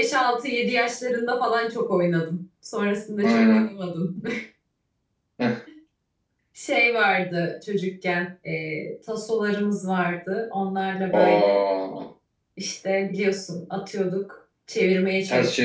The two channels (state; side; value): identical; both; correlation 1.00